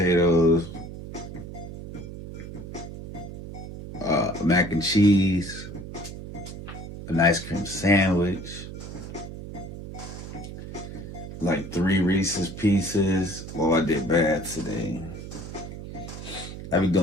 mac and cheese, an ice cream sandwich, like 3 Reese's Pieces. Oh, I did bad today. I be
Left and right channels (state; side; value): noise; right; hum, 10 dB below the sound